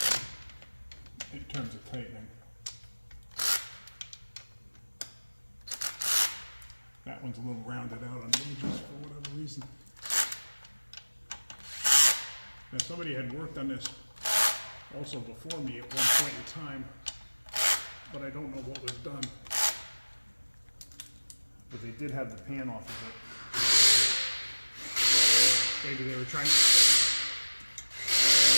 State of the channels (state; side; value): inverted; both; correlation -1.00